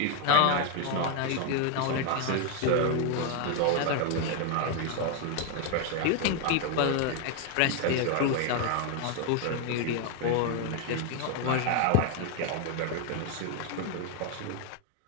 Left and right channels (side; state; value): both; different; correlation 0.01